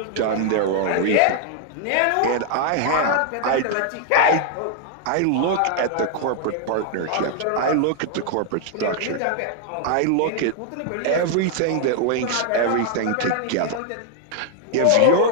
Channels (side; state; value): both; different; correlation 0.00